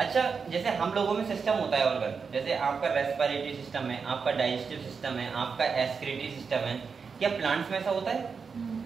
जैसे हम लोगों में सिस्टम होता है ऑर्गन, जैसे आपका रेस्पिरेटरी सिस्टम है, आपका डाइजेस्टिव सिस्टम है, आपका एक्सक्रीटरी सिस्टम है, क्या प्लांट्स में ऐसा होता है?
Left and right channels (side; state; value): left; quieter; 5.5 dB